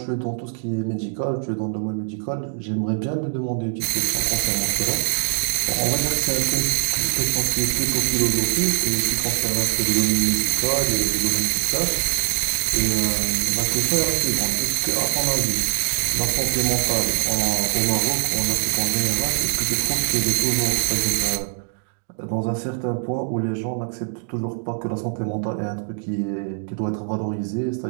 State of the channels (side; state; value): left; silent; digital silence